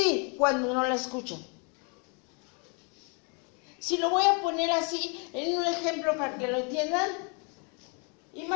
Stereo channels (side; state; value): right; quieter; 35.9 dB